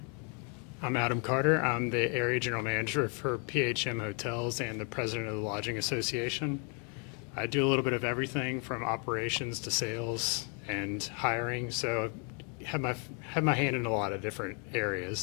I'm Adam Carter. I'm the Area General Manager for PHM Hotels and the President of the Lodging Association. I do a little bit of everything from operations to sales and hiring, so I have my hand in a lot of different areas.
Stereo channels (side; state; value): right; quieter; 37.7 dB